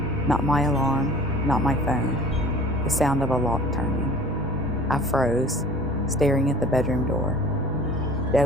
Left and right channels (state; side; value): normal; both; correlation 0.46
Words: Not my alarm, not my phone, the sound of a lock turning. I froze, staring at the bedroom door. It